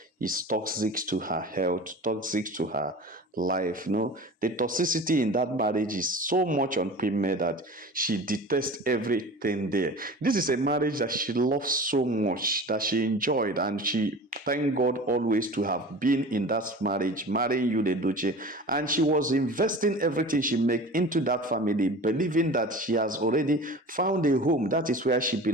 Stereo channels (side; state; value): both; normal; correlation 0.37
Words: is toxic to her health, toxic to her life. The toxicity in that marriage is so much on Premier that she detests everything there. This is a marriage that she loves so much, that she enjoyed, and she thank God always to have been in that marriage, marrying you, Edochie. And she was investing everything she make into that family, believing that she has already found a home. That is where she